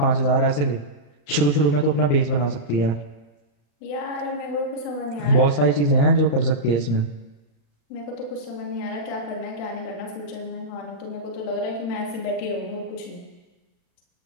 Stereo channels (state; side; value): late; right; 35 ms